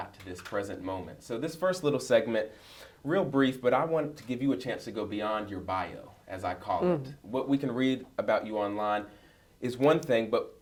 to this present moment. So this first little segment, real brief, but I want to give you a chance to go beyond your bio, as I call it. What we can read about you online is one thing, but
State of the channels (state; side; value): identical; both; correlation 1.00